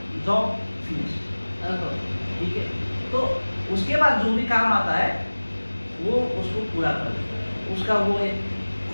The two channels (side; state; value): both; inverted; correlation -1.00